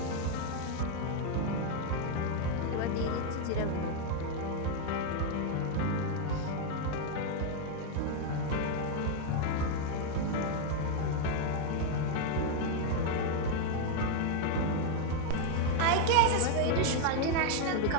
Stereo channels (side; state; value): both; different; correlation 0.00